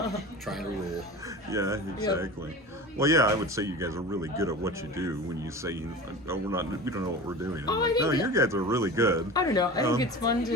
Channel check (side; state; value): both; normal; correlation 0.34